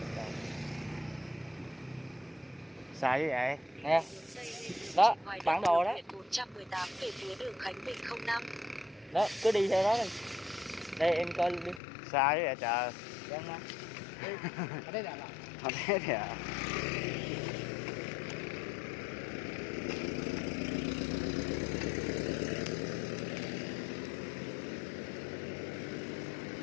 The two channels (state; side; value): drops out; right; at 11.8 s